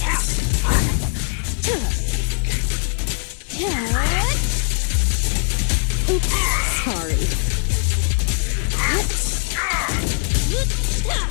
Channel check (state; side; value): silent; right; digital silence